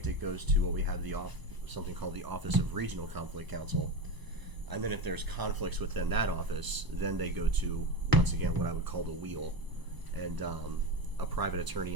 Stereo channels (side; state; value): left; late; 1.0 ms